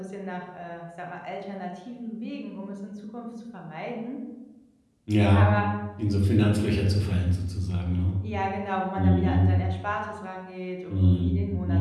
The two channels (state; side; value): identical; both; correlation 1.00